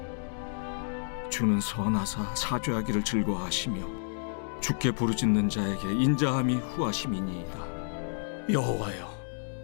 주는 선하사 사죄하기를 즐거워하시며 주께 부르짖는 자에게 인자함이 후하심이니이다. 여호와여,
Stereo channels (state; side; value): silent; right; digital silence